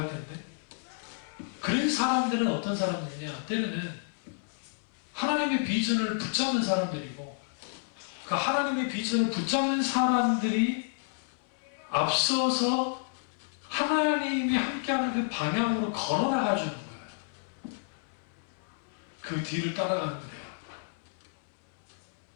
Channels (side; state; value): right; silent; 57 dB below the other